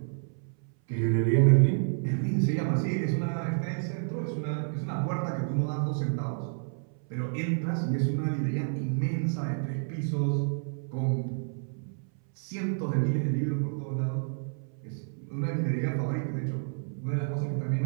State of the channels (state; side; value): silent; left; 58 dB below the other